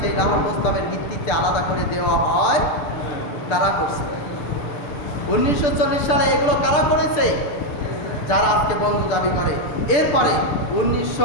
সেই লাহোর প্রস্তাবের ভিত্তিতে আলাদা করে দেওয়া হয়। কারা করছে? 1940 সালে এগুলো কারা করেছে? যারা আজকে বন্ধু দাবি করে। এরপরে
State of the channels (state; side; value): late; right; 6.7 ms